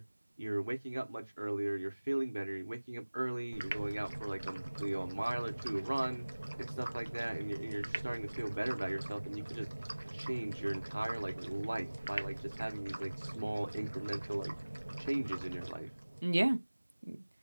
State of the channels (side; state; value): both; inverted; correlation -1.00